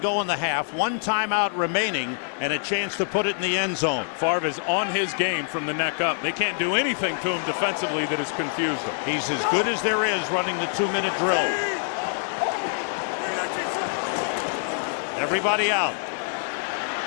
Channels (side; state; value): right; silent; digital silence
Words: in the half, 1 timeout remaining, and a chance to put it in the end zone. Favre is on his game from the neck up. They can't do anything to him defensively that has confused him. He's as good as there is running the 2-minute drill. Everybody out.